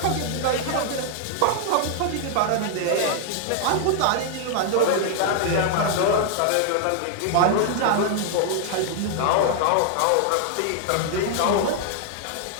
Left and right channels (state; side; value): different; both; correlation 0.00